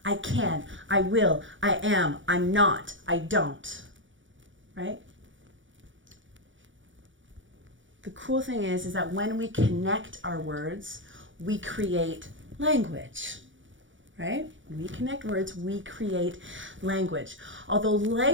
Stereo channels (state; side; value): late; left; 0.56 ms